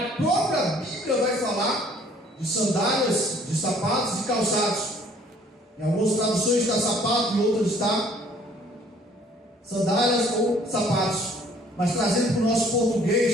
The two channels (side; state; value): both; normal; correlation 0.58